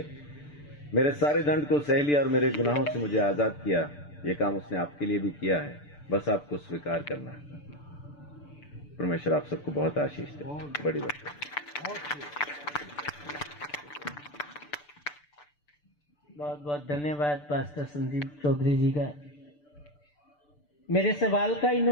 मेरे सारे दंड को सह लिया और मेरे गुनाहों से मुझे आजाद किया। ये काम उसने आपके लिए भी किया है, बस आपको स्वीकार करना है। परमेश्वर आप सबको बहुत आशीष दे। बड़ी बात है। बहुत बहुत धन्यवाद पास्टर संदीप चौधरी जी का। मेरे सवाल का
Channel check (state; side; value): late; right; 6.8 ms